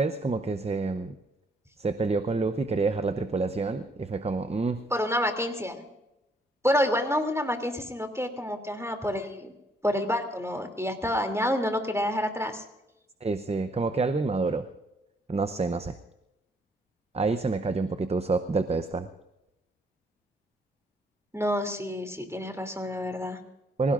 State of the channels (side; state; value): both; normal; correlation 0.67